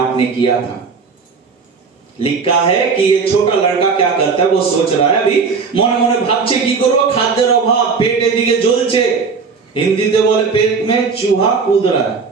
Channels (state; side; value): quieter; left; 5.1 dB